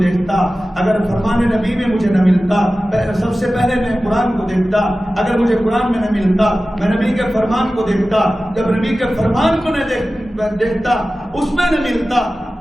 دیکھتا، اگر فرمان نبی میں مجھے نہ ملتا سب سے پہلے میں قرآن کو دیکھتا، اگر مجھے قرآن میں نہ ملتا میں نبی کے فرمان کو دیکھتا، جب نبی کے فرمان کو نہ دیکھتا اس میں نہ ملتا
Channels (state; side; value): normal; both; correlation 0.95